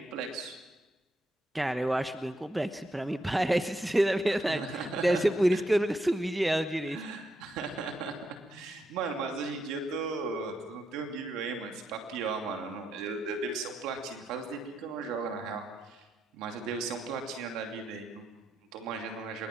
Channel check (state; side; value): normal; both; correlation 0.81